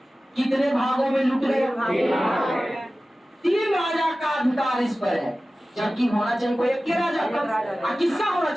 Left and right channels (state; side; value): normal; both; correlation 0.96